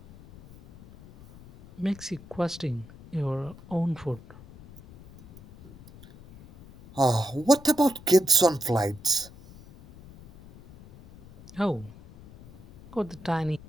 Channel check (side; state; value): left; noise; rumble, 20 dB below the sound